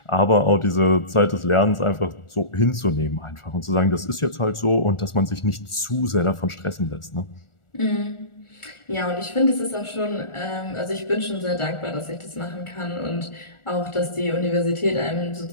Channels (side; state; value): right; late; 1.4 ms